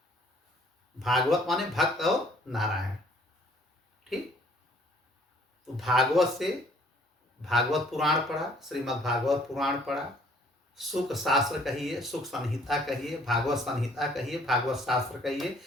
भागवत माने भक्त और नारायण, ठीक। तो भागवत से भागवत पुराण पढ़ा, श्रीमद् भागवत पुराण पढ़ा। सुख शास्त्र कहिए, सुख संहिता कहिए, भागवत संहिता कहिए, भागवत शास्त्र कहिए,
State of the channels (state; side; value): normal; both; correlation 0.59